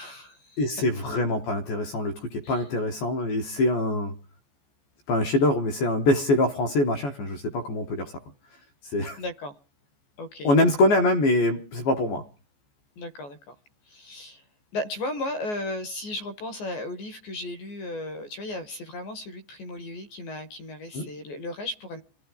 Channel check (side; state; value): right; late; 14 ms